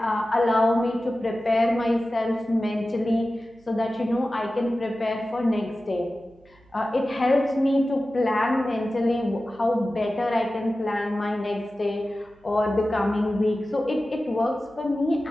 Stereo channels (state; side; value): noise; right; hum, 30 dB below the sound